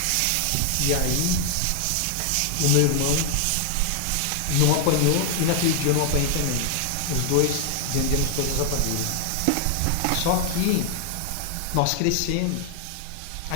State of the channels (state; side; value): different; both; correlation 0.00